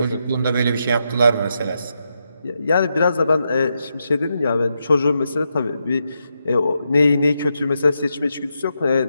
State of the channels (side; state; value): both; inverted; correlation -0.84